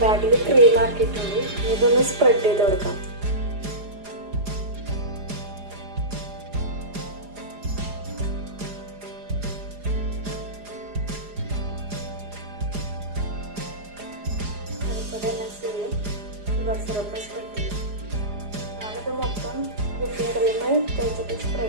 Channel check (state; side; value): late; left; 4.9 ms